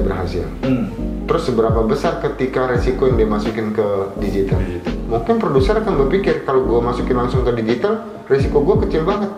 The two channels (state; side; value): identical; both; correlation 1.00